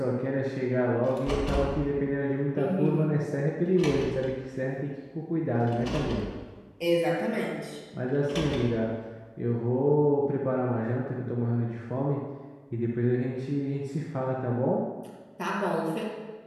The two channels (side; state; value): both; identical; correlation 1.00